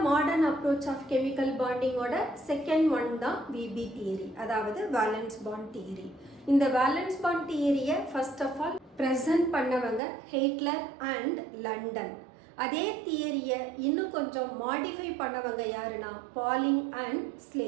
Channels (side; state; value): left; drops out; at 10.0 s